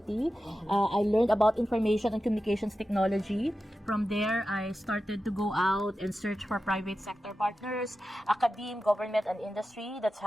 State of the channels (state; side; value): normal; both; correlation 0.92